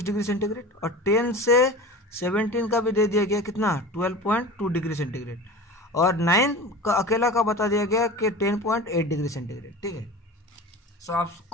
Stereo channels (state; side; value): normal; both; correlation 0.34